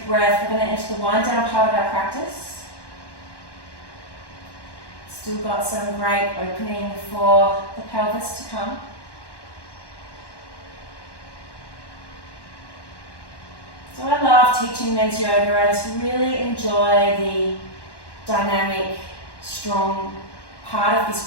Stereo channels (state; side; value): late; right; 1.1 ms